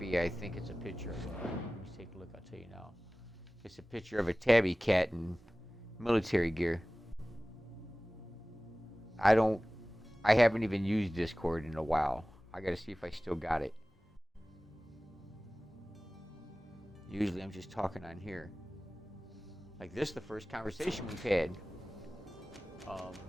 I think it's a picture of let me take a look, I'll tell you now. It's a picture of a tabby cat in military gear. I haven't even used Discord in a while. I gotta see if I still got it. Usually I'm just talking on here. Like this, the first conversation we've had.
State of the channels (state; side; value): normal; both; correlation 0.98